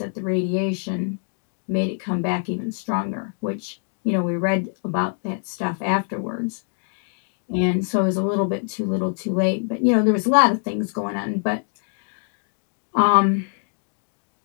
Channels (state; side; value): silent; right; 63 dB below the other